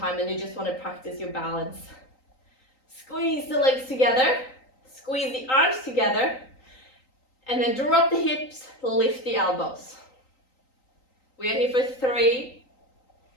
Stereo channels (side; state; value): right; late; 3.9 ms